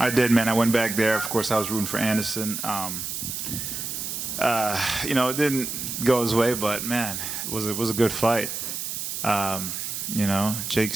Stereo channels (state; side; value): noise; right; hiss, 5 dB below the sound